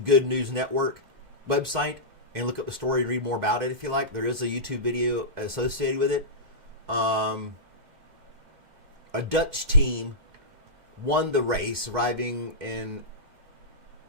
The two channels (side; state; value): left; late; 2.1 ms